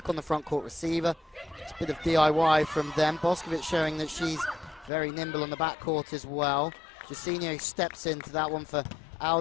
on the front court receiver. It's a bit of DIY from them. Boscovich showing that she's very nimble on the back court as well. Jacinho steps into that one for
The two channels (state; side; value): drops out; right; at 4.9 s